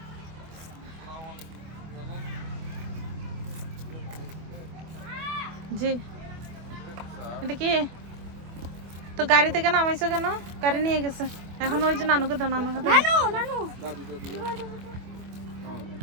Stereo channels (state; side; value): late; left; 25 ms